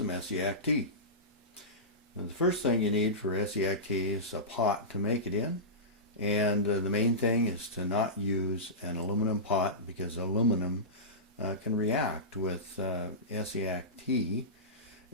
Essiac tea. Now, the first thing you need for Essiac tea is a pot to make it in, and the main thing is to not use an aluminum pot because aluminum can react with Essiac tea,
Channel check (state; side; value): normal; both; correlation -0.18